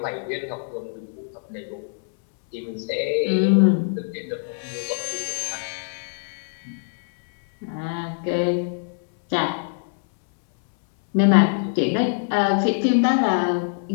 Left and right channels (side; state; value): right; silent; 63 dB below the other